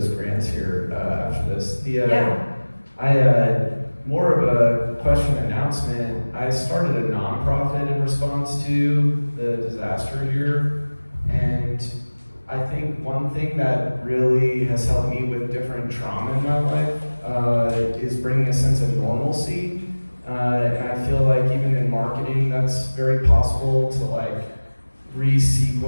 grants here after this. More of a question announcement. I started a nonprofit in response to the disaster here, and I think one thing that really has helped me with different trauma in my life is bringing a sense of normalcy. And I feel like even in marketing, that's very possible to like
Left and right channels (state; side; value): inverted; both; correlation -1.00